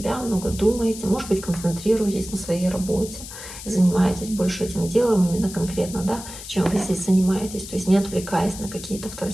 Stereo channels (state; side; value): noise; left; hiss, 12 dB below the sound